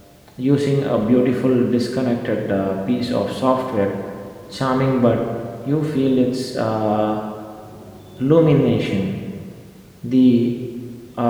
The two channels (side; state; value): both; identical; correlation 1.00